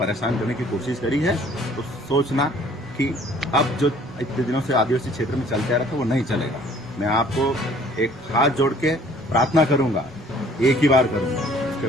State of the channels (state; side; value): normal; both; correlation 0.56